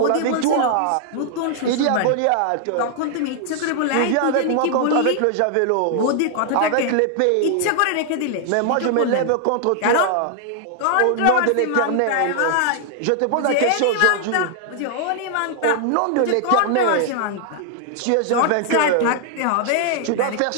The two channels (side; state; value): both; different; correlation 0.00